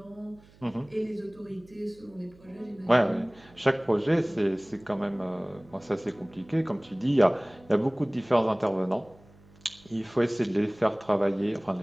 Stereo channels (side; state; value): right; noise; hum, 26 dB below the sound